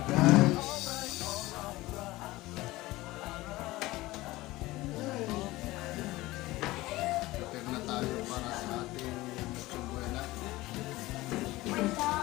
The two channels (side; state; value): right; quieter; 18.9 dB